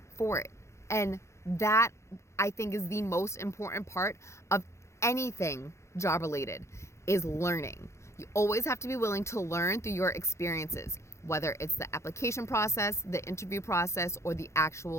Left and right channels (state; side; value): late; right; 0.14 ms